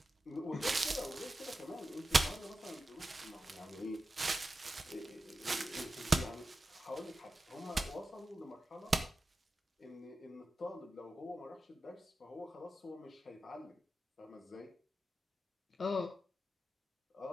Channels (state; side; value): normal; both; correlation 0.92